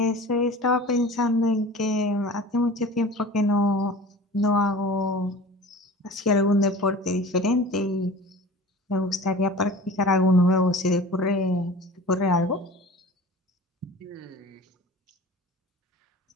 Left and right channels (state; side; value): normal; both; correlation 0.39